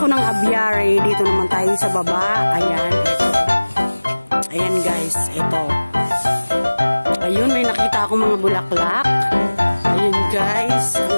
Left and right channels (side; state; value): both; inverted; correlation -1.00